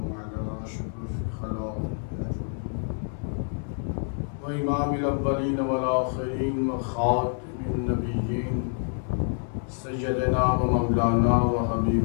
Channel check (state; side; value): silent; right; digital silence